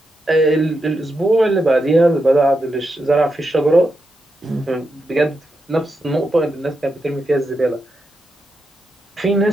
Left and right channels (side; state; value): both; normal; correlation 0.86